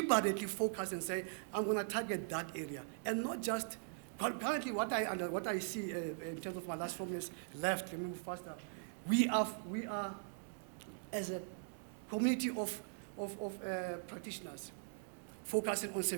focus and say, I'm going to target that area, and not just currently what I see in terms of my last 4 years left, let me move faster. We are as a community of practitioners focusing on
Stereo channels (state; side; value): silent; left; digital silence